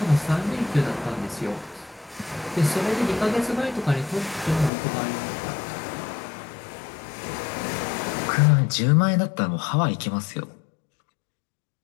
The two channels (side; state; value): right; drops out; at 4.7 s